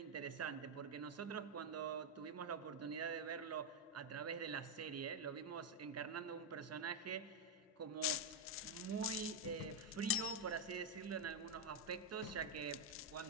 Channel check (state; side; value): normal; both; correlation 0.00